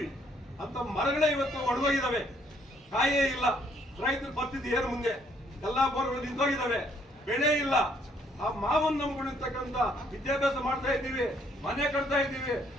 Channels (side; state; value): both; normal; correlation 0.67